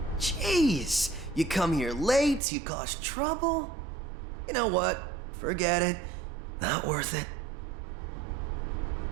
Jeez, you come here late, you cause trouble. You know what? Forget it. Not worth it.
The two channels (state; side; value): drops out; left; at 2.4 s